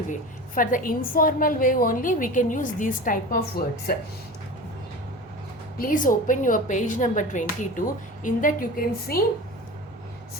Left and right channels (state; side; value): normal; both; correlation 0.33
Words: way. For the informal way only we can use these type of words. Please open your page number 22. In that you can see